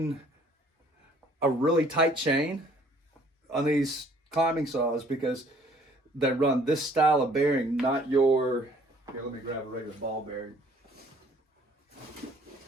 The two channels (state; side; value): normal; both; correlation 0.58